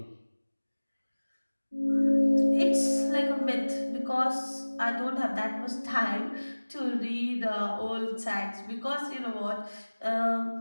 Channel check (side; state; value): both; inverted; correlation -1.00